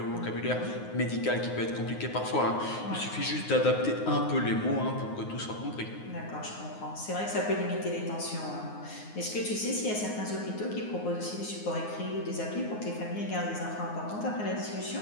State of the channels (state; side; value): late; right; 9.5 ms